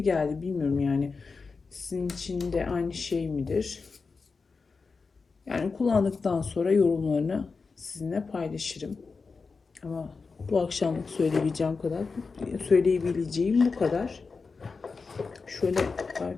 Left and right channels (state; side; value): quieter; right; 4.6 dB